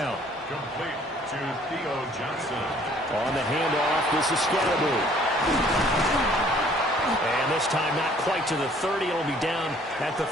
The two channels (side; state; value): both; normal; correlation 0.58